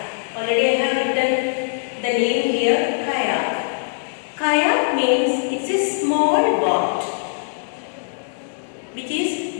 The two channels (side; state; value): right; silent; digital silence